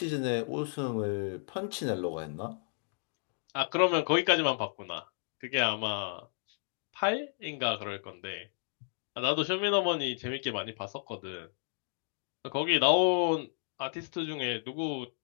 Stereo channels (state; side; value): silent; right; digital silence